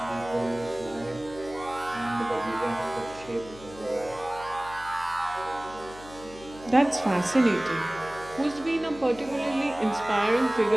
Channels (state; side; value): noise; left; hum, 18 dB below the sound